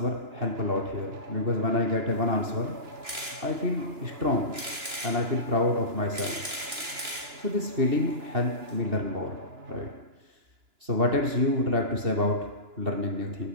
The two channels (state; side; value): late; left; 2.9 ms